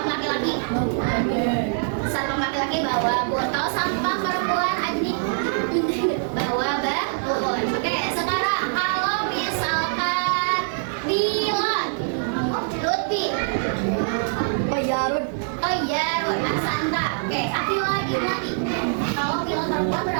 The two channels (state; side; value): silent; left; digital silence